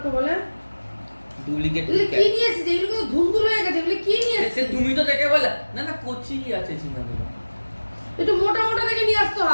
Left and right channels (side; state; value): both; inverted; correlation -1.00